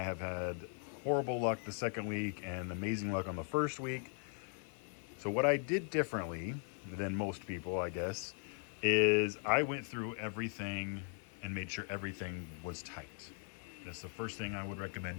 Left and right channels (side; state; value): right; silent; 52 dB below the other